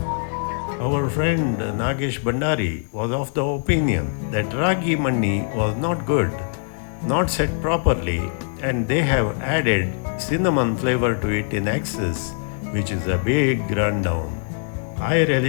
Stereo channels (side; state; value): right; silent; digital silence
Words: Our friend Nagesh Bandari was of the opinion that ragi mani was not good, not set properly, and they have added cinnamon flavor to it in excess, which is a big rundown. I